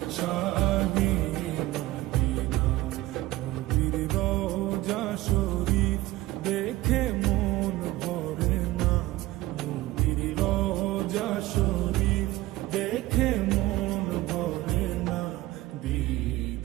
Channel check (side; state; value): left; quieter; 17.6 dB